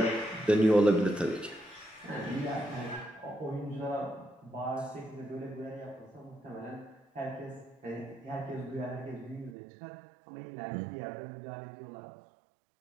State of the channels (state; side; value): drops out; left; at 9.6 s